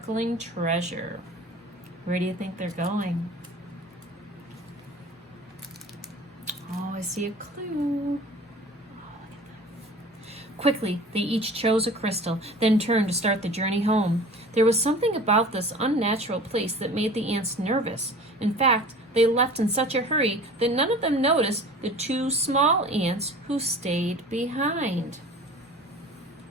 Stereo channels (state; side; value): normal; both; correlation 0.42